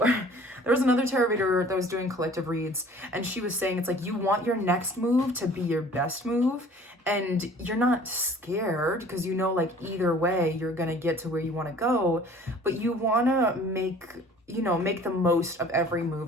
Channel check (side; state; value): both; normal; correlation 0.50